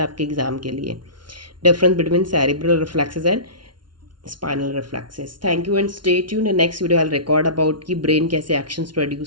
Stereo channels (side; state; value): left; late; 0.71 ms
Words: एग्जाम के लिए, difference between cerebral reflexes and spinal reflexes. Thank you and stay tuned. Next video I will record about कि ब्रेन कैसे एक्शंस